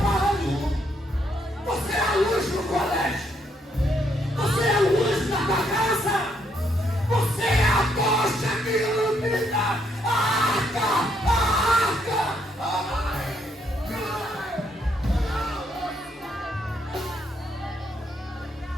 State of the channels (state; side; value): normal; both; correlation 0.74